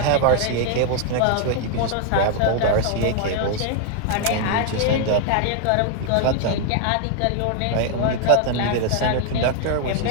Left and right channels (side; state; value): both; different; correlation 0.00